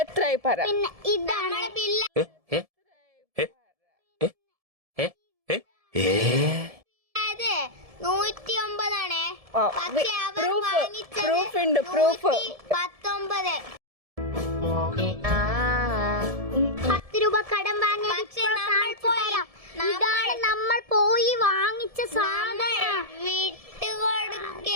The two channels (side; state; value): left; late; 1.7 ms